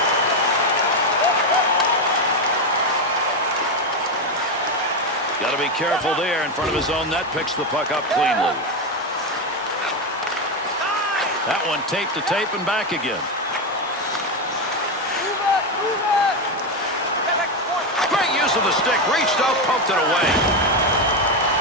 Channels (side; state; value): both; normal; correlation 0.10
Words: Got to be careful there in front of his own net. Picks the puck up cleanly. That one tape to tape and back again. Great use of the stick. Reached out, poked it away.